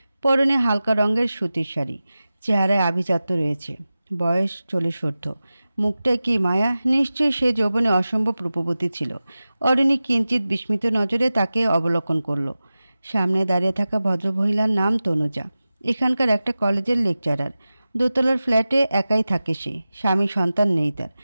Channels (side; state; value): both; inverted; correlation -0.95